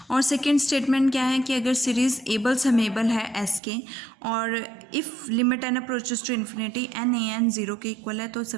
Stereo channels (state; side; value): drops out; left; at 3.6 s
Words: और सेकेंड स्टेटमेंट क्या है कि अगर सीरीज एबल समेबल है एस के और if limit N approaches to infinity n a n zero के इक्वल है तो